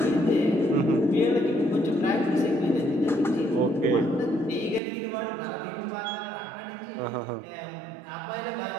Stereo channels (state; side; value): drops out; left; at 4.8 s